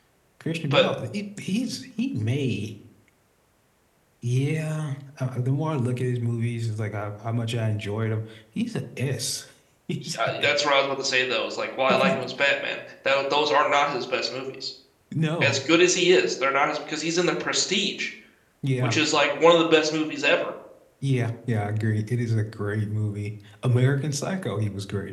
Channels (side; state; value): both; identical; correlation 1.00